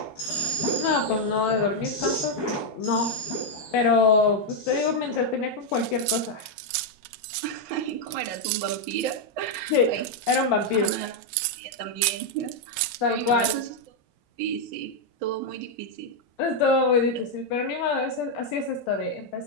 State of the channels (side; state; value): both; normal; correlation 0.00